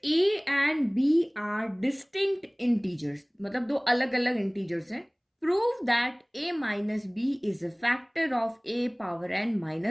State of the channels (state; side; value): identical; both; correlation 1.00